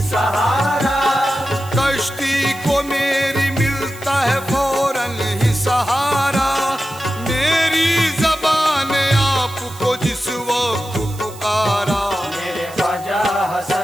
सहारा, कश्ती को मेरी मिलता है फौरन ही सहारा। मेरी ज़बान आपको जिस वक्त पुकारा। मेरे ख्वाजा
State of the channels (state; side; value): noise; right; hiss, 19 dB below the sound